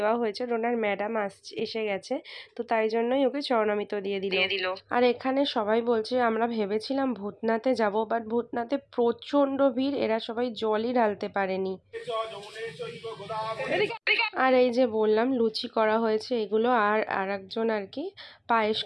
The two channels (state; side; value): identical; both; correlation 1.00